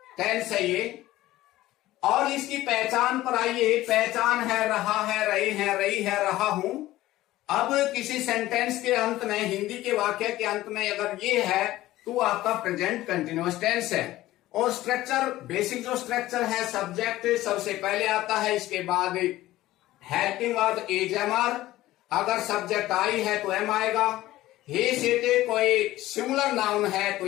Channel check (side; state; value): right; quieter; 16.1 dB